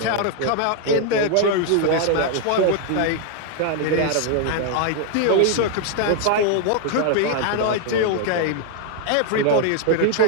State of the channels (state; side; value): different; both; correlation 0.00